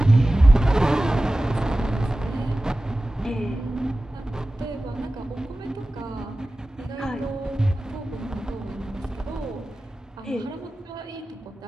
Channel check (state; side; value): normal; both; correlation 0.96